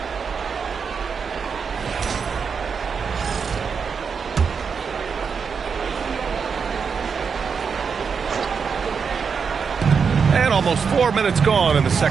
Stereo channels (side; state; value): left; quieter; 6.0 dB